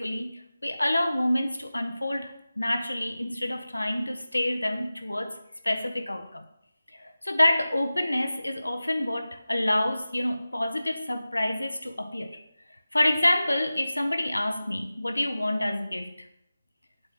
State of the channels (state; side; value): inverted; both; correlation -0.96